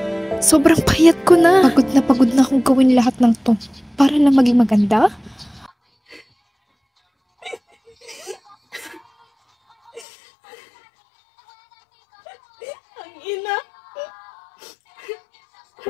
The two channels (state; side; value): drops out; right; at 10.1 s